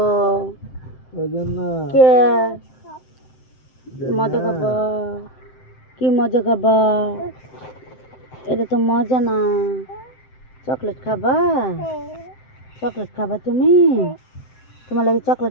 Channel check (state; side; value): late; right; 7.7 ms